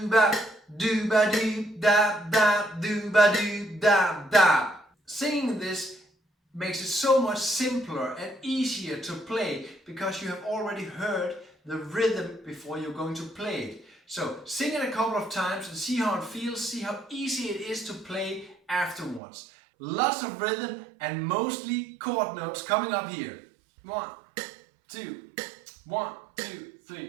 ba doo ba doo da da doo ba doo da da. Singing this makes it so much simpler and easier to play because you have already heard the rhythm before you're going to play it. So sing it a couple of times and see how it feels, see how easy it is to play afterwards. Lots of rhythm and mostly chord notes coming up here. 1, 2, 1, 2,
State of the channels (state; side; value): drops out; left; at 19.2 s